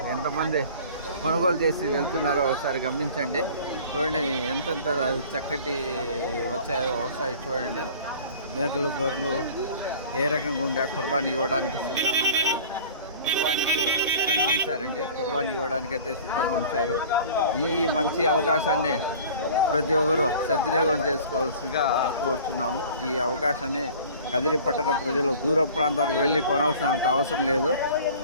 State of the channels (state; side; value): inverted; both; correlation -0.45